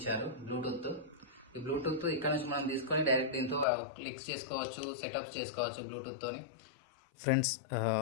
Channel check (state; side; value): drops out; right; at 3.7 s